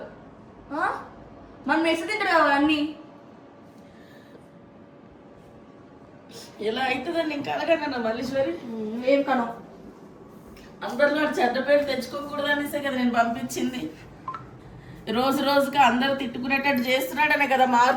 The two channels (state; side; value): identical; both; correlation 1.00